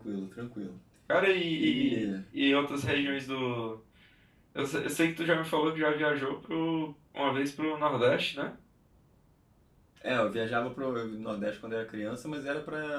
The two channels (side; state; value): both; identical; correlation 1.00